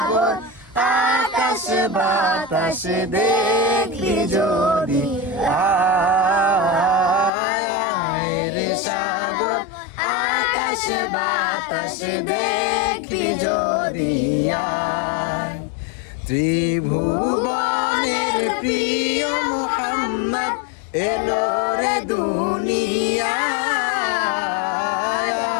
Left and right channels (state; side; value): drops out; right; at 7.3 s